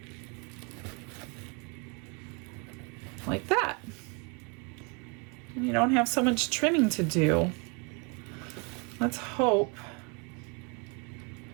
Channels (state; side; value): quieter; left; 32.0 dB